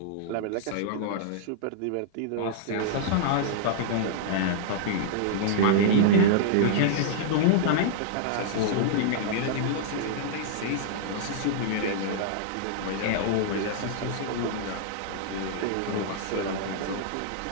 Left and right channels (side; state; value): both; different; correlation -0.01